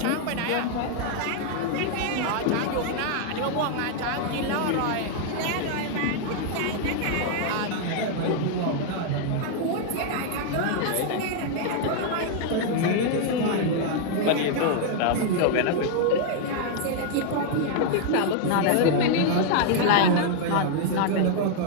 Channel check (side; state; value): both; different; correlation 0.00